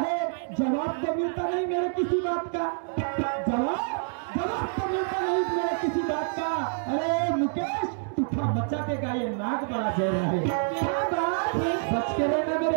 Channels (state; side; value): silent; left; digital silence